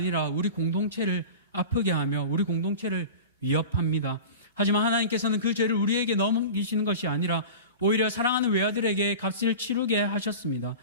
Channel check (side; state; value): both; inverted; correlation -0.34